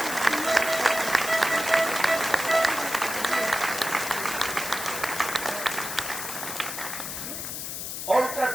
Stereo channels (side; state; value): left; noise; hiss, 6 dB below the sound